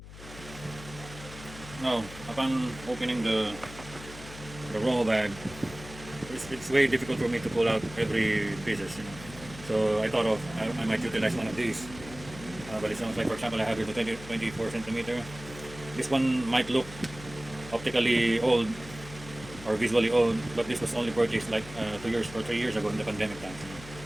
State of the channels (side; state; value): left; noise; hum, 15 dB below the sound